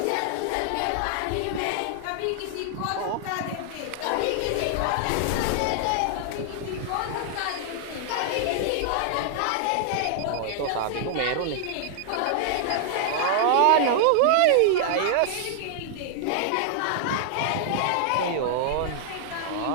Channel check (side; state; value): both; different; correlation -0.01